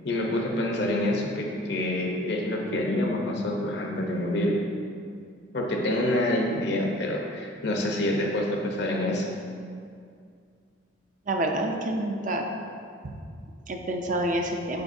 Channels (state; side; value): normal; both; correlation 0.45